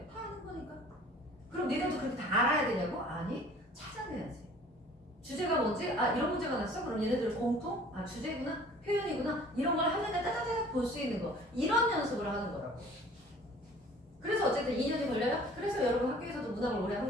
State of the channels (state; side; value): normal; both; correlation 0.50